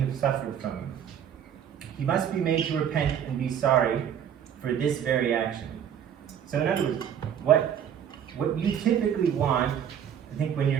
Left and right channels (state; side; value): quieter; left; 9.0 dB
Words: suffered from him. He must be made to repent and be sorry for this very action. So in other words, what you typically want, I think, when